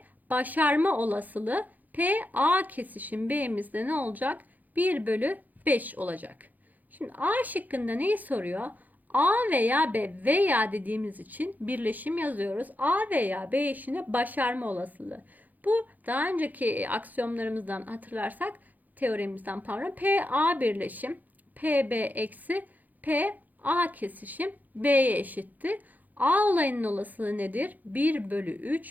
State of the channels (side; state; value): left; late; 0.082 ms